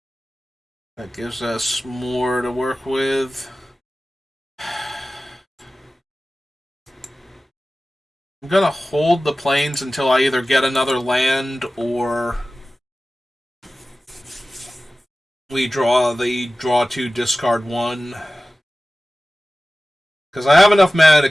that gives us more to work with. I'm gonna hold the plains until I either get another land or we draw the draw 2, discard 1. Because I have enough mana to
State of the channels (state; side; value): normal; both; correlation 0.96